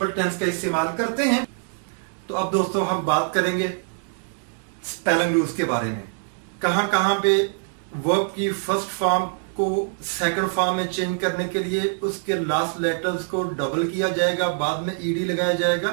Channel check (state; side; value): silent; left; 59 dB below the other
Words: टेंस का इस्तेमाल करते हैं। तो अब दोस्तों हम बात करेंगे स्पेलिंग रूल्स के बारे में। कहां कहां पे वर्ब की फर्स्ट फॉर्म को सेकंड फॉर्म में चेंज करने के लिए उसके लास्ट लेटर्स को डबल किया जाएगा, बाद में ईडी लगाया